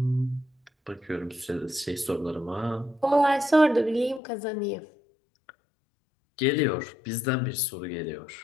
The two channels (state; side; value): drops out; right; at 4.2 s